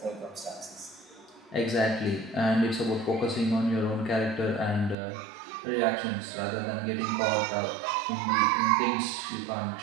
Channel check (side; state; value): left; drops out; at 5.0 s